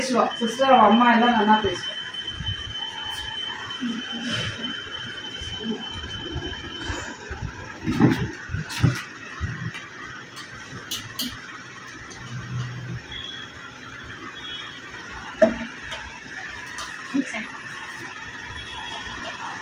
சிஸ்டர் அவள் அம்மா எல்லாம் நல்லா பேசுவா.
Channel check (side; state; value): both; identical; correlation 1.00